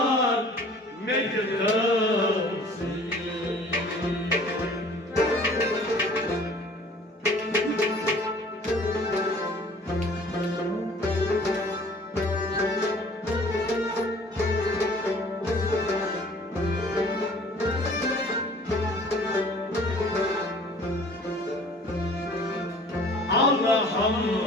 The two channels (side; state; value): both; normal; correlation 0.50